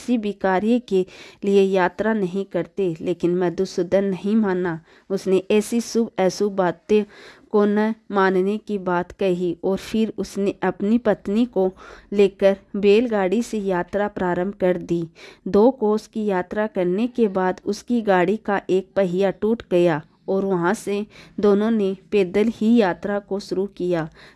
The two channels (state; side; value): identical; both; correlation 1.00